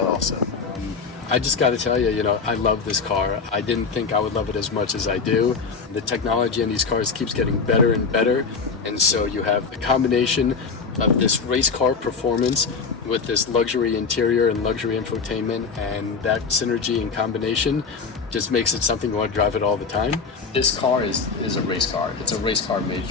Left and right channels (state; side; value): quieter; right; 5.1 dB